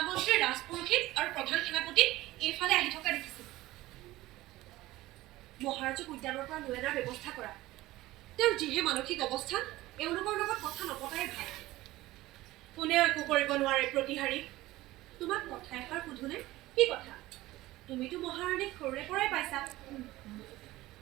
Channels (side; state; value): left; quieter; 17.5 dB